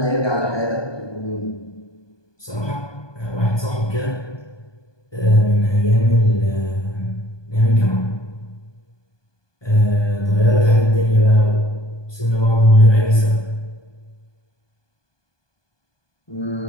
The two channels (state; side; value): late; right; 1.2 ms